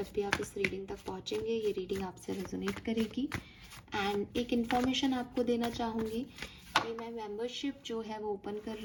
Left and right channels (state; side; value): identical; both; correlation 1.00